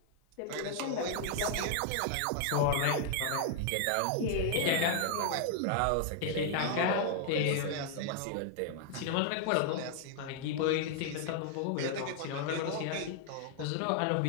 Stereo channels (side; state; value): both; different; correlation 0.00